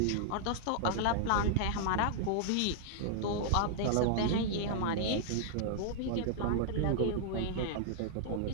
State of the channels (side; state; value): both; different; correlation -0.01